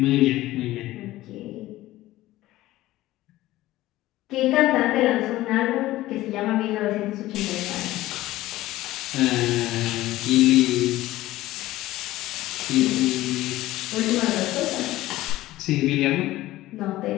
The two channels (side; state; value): right; quieter; 16.4 dB